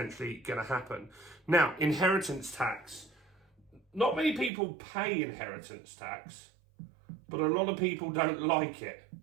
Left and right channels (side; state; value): left; drops out; at 4.5 s